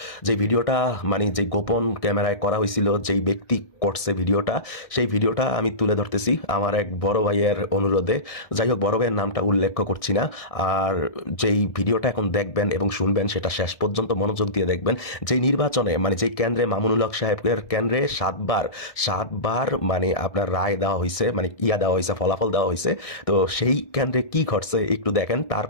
যে ভিডিওটা যে গোপন ক্যামেরায় করা হয়েছিল, যেই ব্যক্তি করছে ভিডিওটা, সেই ভিডিওটা আমি তুলে ধরতেছি আমার এক বড় ভাইয়ের অনুরোধে। যাই হোক, বড় ভাইয়ের নামটা উল্লেখ করছি না। আর যেই ভিডিওটা এখন দেখবেন এবং শুনবেন, সেটা শেষ পর্যন্ত মনোযোগ দিয়ে দেখবেন। যেই নির্বাচনে যেই কেন্দ্রে মামুনুল হক সাহেবের কেন্দ্রে সাতবার আপনার রায় দেওয়া হয়েছে, দেওয়া হয়েছে, ফলাফল দেওয়া হয়েছে। তো সেই কেন্দ্রে কি ঘটছে একটু দেখেন।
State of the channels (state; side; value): late; right; 1.6 ms